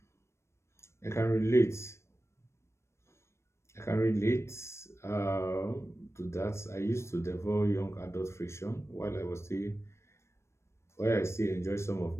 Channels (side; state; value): right; late; 0.13 ms